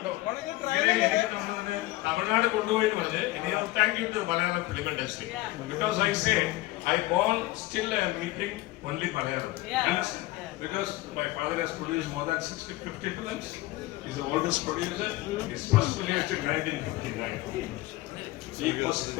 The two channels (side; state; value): right; quieter; 18.8 dB